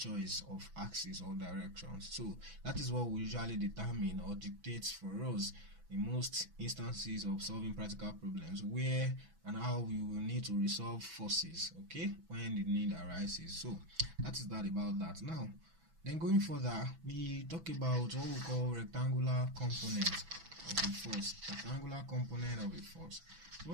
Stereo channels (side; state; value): left; late; 6.1 ms